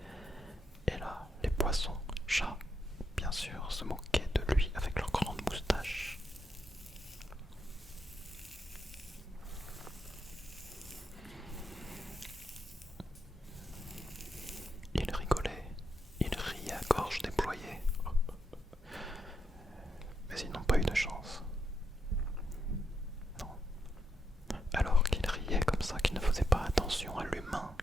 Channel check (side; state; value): both; normal; correlation 0.82